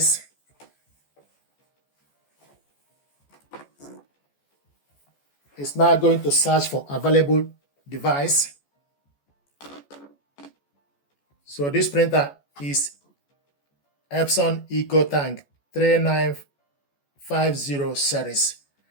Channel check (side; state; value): right; late; 14 ms